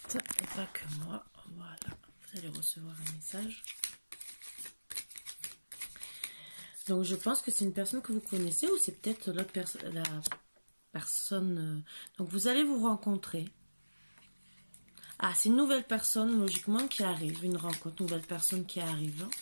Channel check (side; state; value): both; inverted; correlation -1.00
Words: et pas que moi. Voilà, vous allez recevoir un message. Donc je pense que c'est une personne que vous connaissez ou c'est peut-être la personne. Donc vous allez vous rencontrer. Ah, c'est une nouvelle personne logiquement qui arrive, une rencontre, nouvelle personne qui arrive.